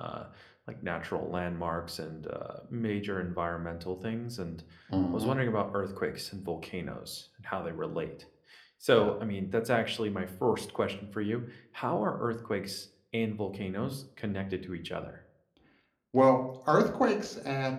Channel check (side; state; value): both; identical; correlation 1.00